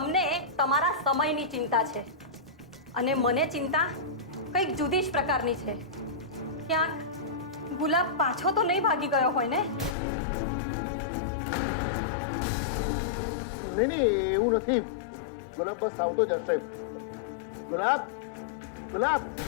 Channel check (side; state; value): right; drops out; at 10.0 s